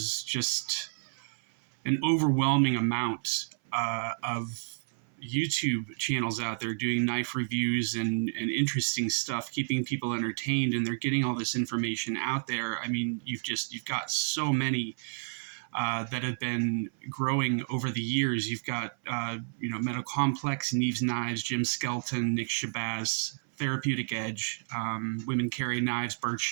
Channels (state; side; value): silent; left; 58 dB below the other